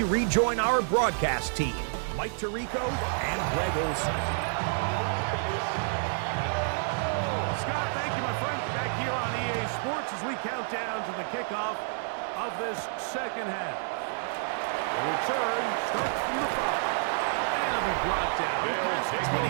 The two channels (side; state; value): left; silent; digital silence